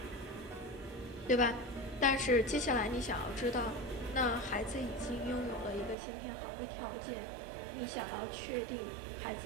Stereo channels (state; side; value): drops out; left; at 6.0 s